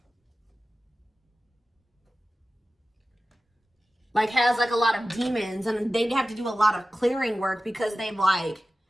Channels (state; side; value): normal; both; correlation 0.95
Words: like has like a lot of demons, and they have to do a lot of clearing work because they've like